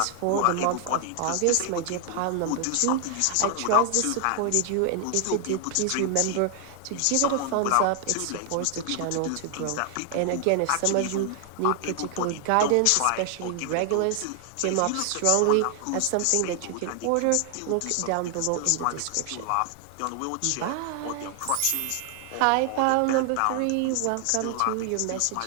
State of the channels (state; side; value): different; both; correlation 0.00